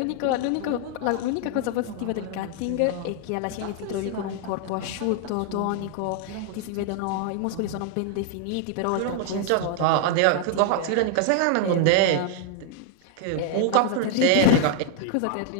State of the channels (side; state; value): both; different; correlation 0.00